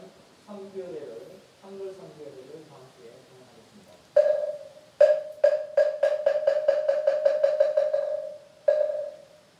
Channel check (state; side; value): identical; both; correlation 1.00